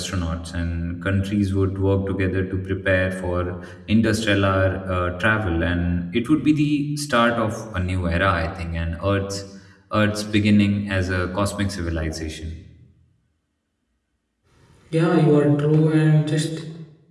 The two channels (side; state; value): both; identical; correlation 1.00